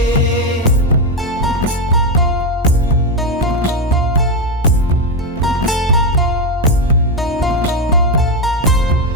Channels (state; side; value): normal; both; correlation 0.09